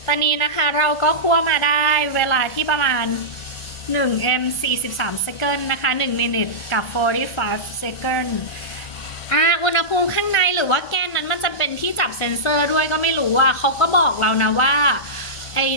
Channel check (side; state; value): right; late; 1.5 ms